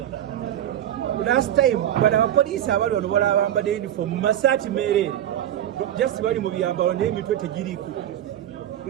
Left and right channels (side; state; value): left; quieter; 11.3 dB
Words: last time bano abapoliisi abali wano bala abambadde uniform mu masaati meereere just bali mu byambalo naye emitwe tegiriiko.